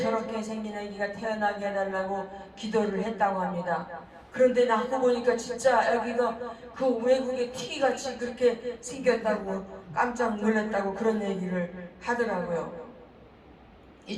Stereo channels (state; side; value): identical; both; correlation 1.00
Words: 생긴 아기가 태어나게 해달라고 기도를 했다고 합니다. 그런데 낳고 보니까 진짜 아기가 그 외국의 티기같이 그렇게 생겼다고 깜짝 놀랐다고 그런 얘기를 하더라고요.